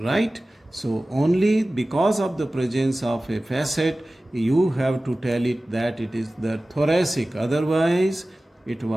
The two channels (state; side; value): normal; both; correlation 0.97